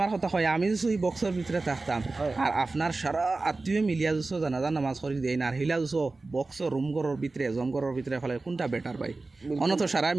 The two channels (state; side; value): quieter; left; 3.5 dB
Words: কথা হয় আমি যদি এই বক্সের ভিতরে থাকতাম আর আপনার সারা আত্মীয় মিলিয়া যুছো জানাজা নামাজ করি দেয় না আর হিলা যুছো বক্সর রুম ঘরের ভিতরে জমঘরের ভিতরে ফেলে কোনটা বেটার ভাই? অনত সারা